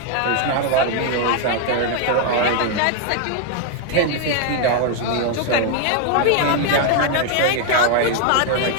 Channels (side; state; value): both; different; correlation 0.01